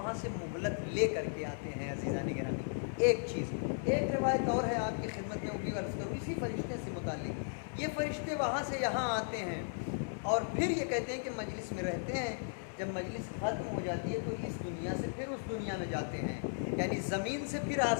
سے مہلت لے کر کے آتے ہیں۔ عزیزان گرامی، ایک چیز، ایک روایت اور ہے آپ کی خدمت میں، وہ بھی عرض کروں اسی فرشتے سے متعلق۔ یہ فرشتے وہاں سے یہاں آتے ہیں اور پھر یہ کہتے ہیں کہ مجلس میں رہتے ہیں، جب مجلس ختم ہو جاتی ہے تو اس دنیا سے پھر اس دنیا میں جاتے ہیں، یعنی زمین سے پھر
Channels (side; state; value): right; silent; digital silence